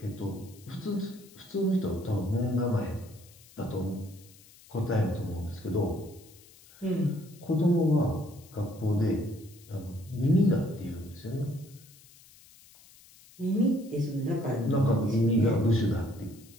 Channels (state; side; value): noise; left; hiss, 24 dB below the sound